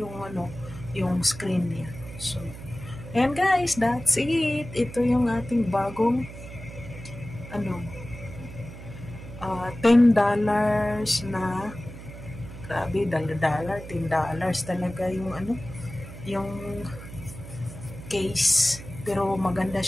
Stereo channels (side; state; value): right; noise; hum, 13 dB below the sound